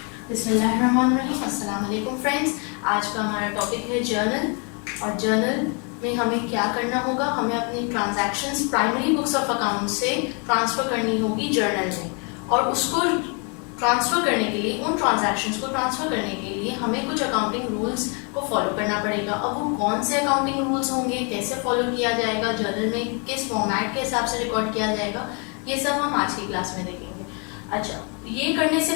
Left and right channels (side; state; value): right; quieter; 35.8 dB